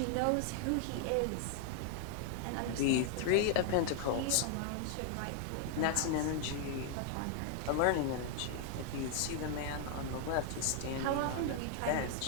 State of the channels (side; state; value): both; different; correlation 0.00